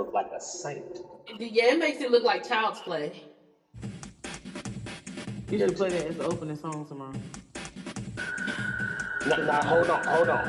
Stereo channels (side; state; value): both; identical; correlation 1.00